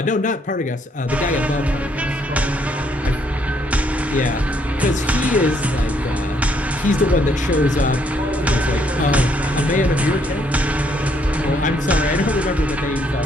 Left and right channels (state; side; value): normal; both; correlation 0.70